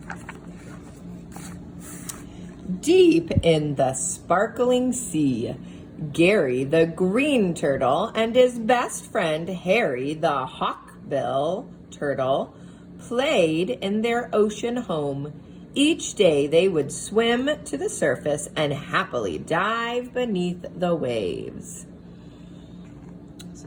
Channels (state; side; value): identical; both; correlation 1.00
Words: Deep in the sparkling sea, Gary the green turtle and his best friend Harry the hawkbill turtle played in their ocean home. Each day they would swim to the surface and happily dive beneath the waves.